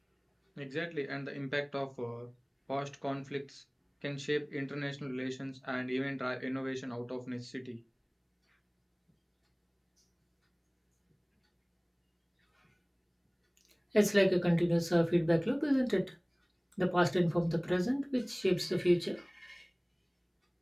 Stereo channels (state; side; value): identical; both; correlation 1.00